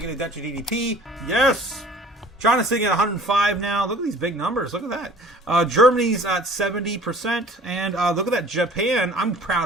debt to GDP. Yes. China's sitting at 105 now. Look at these big numbers. Look at that. Germany's at 70%. And look at that. Japan. I'm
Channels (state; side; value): normal; both; correlation 0.48